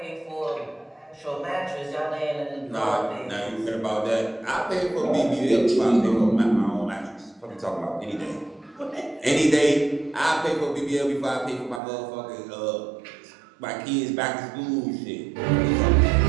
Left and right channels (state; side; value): drops out; left; at 11.8 s